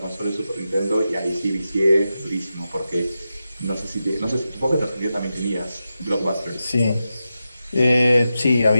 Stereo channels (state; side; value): inverted; both; correlation -0.90